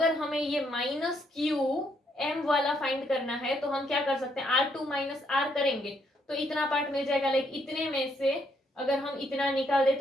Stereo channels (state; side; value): normal; both; correlation 0.73